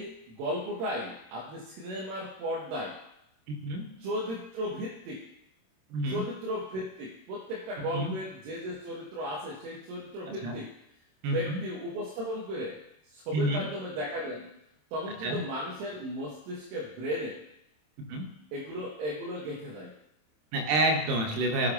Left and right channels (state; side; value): late; left; 27 ms